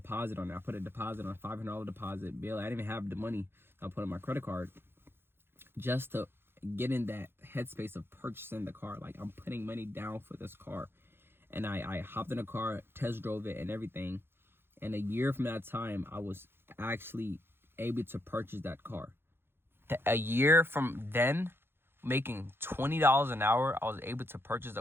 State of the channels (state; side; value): late; left; 0.11 ms